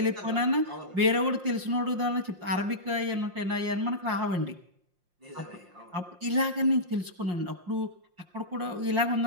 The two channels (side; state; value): left; late; 5.7 ms